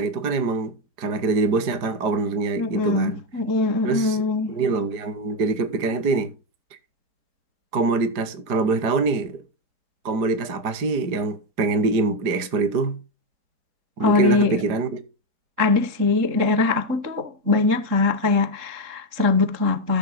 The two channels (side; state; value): left; late; 4.9 ms